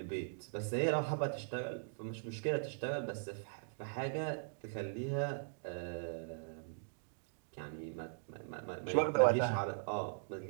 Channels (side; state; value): left; silent; digital silence